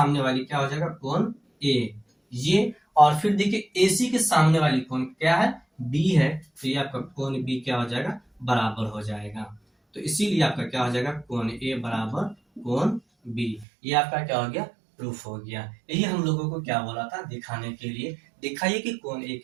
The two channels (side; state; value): left; drops out; at 13.7 s